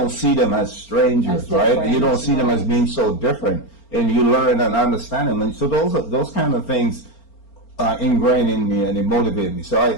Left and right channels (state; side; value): late; right; 4.4 ms